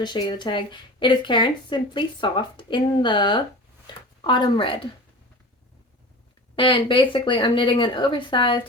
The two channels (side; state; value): both; normal; correlation 0.35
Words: show you the tag. It is Karen Simply Soft in the Autumn Red. And basically I'm knitting an oversized